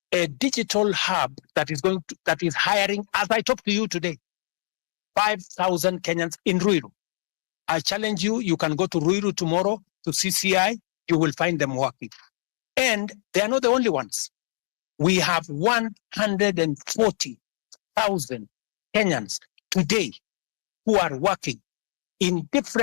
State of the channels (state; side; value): silent; right; digital silence